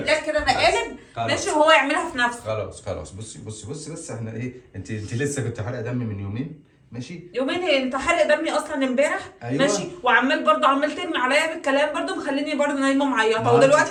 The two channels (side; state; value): both; identical; correlation 1.00